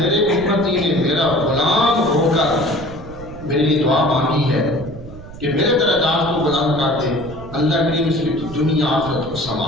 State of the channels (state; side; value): noise; right; rumble, 15 dB below the sound